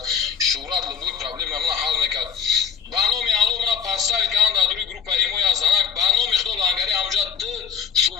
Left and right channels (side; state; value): right; quieter; 6.8 dB